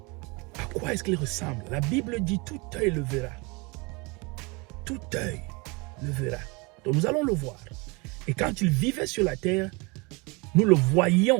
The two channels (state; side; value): quieter; left; 27.8 dB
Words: à quoi est-ce qu'il ressemble? La Bible dit tout œil le verra. Tout œil le verra. Donc nous allons le voir. Et quand il vivait sur la terre, nous le